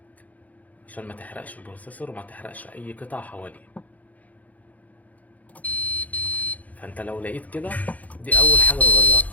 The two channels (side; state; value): right; late; 0.075 ms